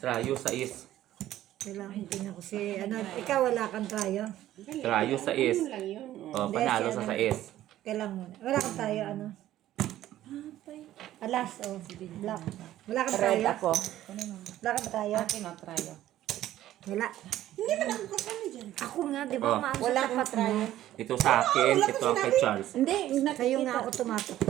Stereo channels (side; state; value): left; quieter; 13.5 dB